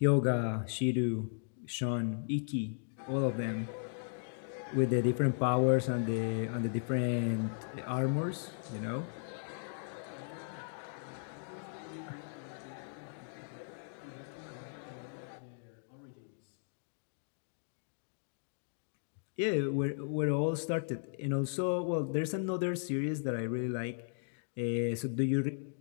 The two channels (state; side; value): silent; right; digital silence